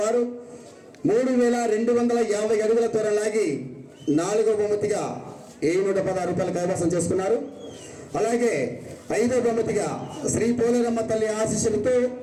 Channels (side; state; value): both; identical; correlation 1.00